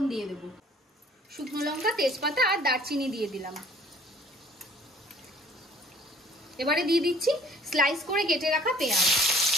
দিয়ে দেব। শুকনো লঙ্কা, তেজপাতা আর দারচিনি দিয়ে দিলাম। এবারে দিয়ে দিচ্ছি স্লাইস করে কেটে রাখা পেঁয়াজ।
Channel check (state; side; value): normal; both; correlation 0.53